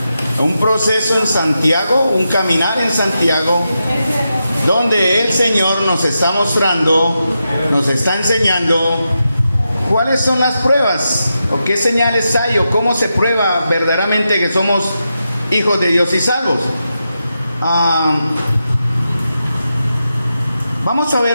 un proceso en Santiago, un caminar en Santiago, donde el Señor nos está mostrando, nos está enseñando cuáles son las pruebas, o qué señales hay, o cómo se prueba verdaderamente que somos hijos de Dios y salvos. Vamos a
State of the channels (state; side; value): inverted; both; correlation -0.88